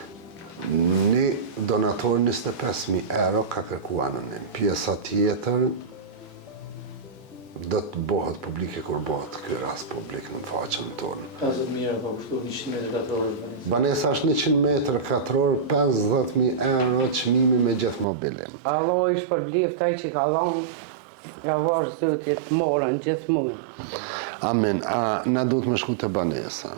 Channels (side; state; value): left; drops out; at 18.1 s